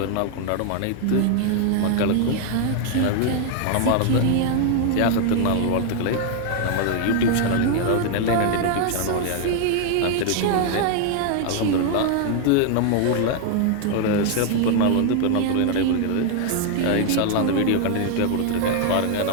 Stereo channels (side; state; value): both; different; correlation 0.00